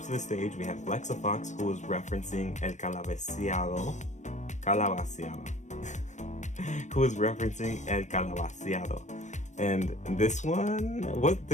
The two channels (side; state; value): right; late; 0.35 ms